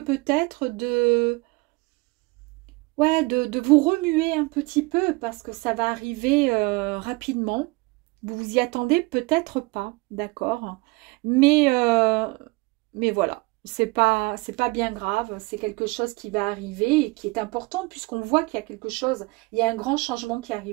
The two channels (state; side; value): quieter; left; 24.9 dB